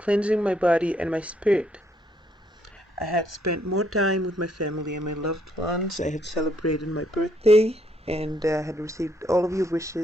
my body and my spirit. I had spent more time with my family and my loved ones. I had celebrated my birthday and had received all of your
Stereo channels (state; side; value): normal; both; correlation 0.71